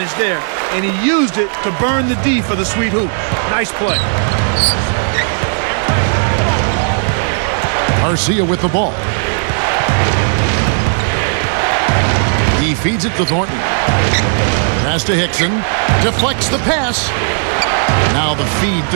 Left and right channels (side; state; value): left; silent; digital silence